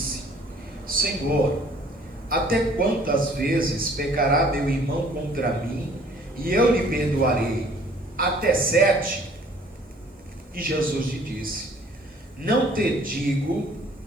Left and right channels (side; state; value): both; normal; correlation 0.56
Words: Senhor, até quantas vezes pecará meu irmão contra mim e eu lhe perdoarei? Até 7? E Jesus lhe disse: Não te digo